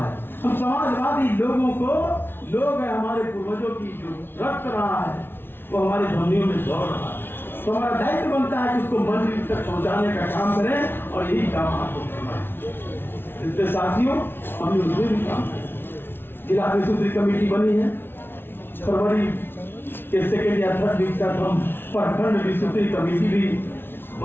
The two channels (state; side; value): late; right; 0.11 ms